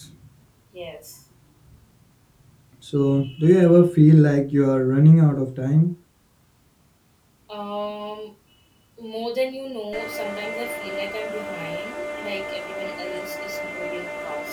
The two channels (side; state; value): both; identical; correlation 1.00